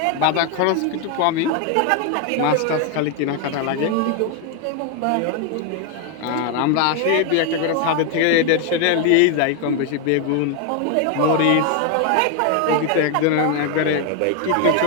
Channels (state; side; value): different; both; correlation 0.01